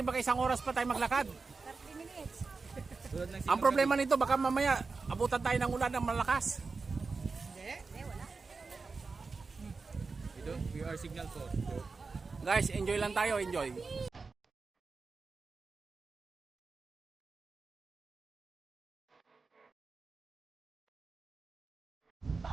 baka isang oras pa tayo maglakad. 30 minutes. Ang problema nito, baka mamaya abutan tayo ng ulan ng malakas. Hindi, wala. We are signal for. Guys, enjoy lang tayo, enjoy.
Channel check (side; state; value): left; quieter; 4.3 dB